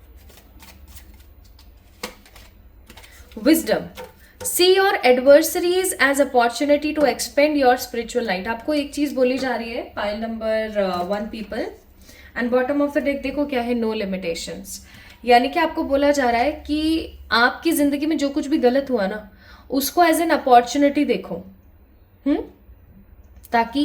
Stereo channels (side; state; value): both; identical; correlation 1.00